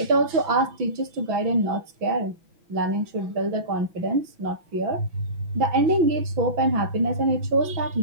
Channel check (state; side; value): late; left; 6.0 ms